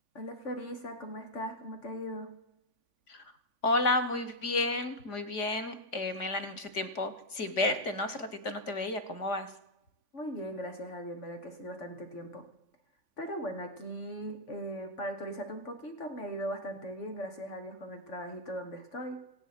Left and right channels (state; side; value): late; right; 3.5 ms